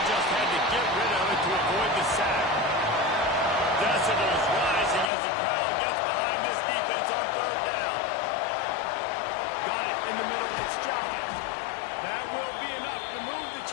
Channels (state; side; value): drops out; right; at 5.1 s